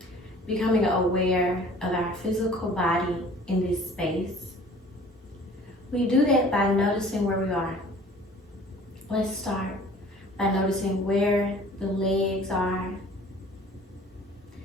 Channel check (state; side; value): normal; both; correlation 0.49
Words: becoming aware of our physical body in this space. We do that by noticing where we are. Let's start by noticing where the legs are,